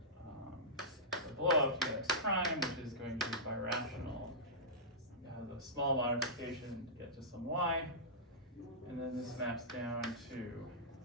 the blow up to x prime, which is going to be birational. You have a small modification to get to some y, and then this maps down to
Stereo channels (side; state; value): both; normal; correlation -0.15